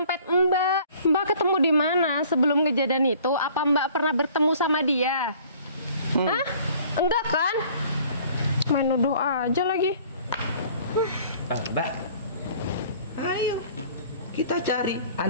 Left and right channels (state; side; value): inverted; both; correlation -0.53